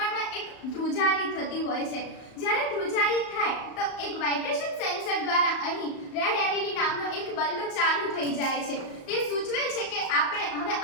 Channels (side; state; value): right; late; 35 ms